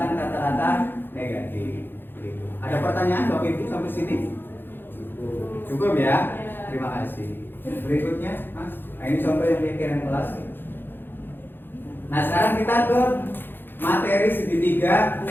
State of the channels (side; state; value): right; late; 0.099 ms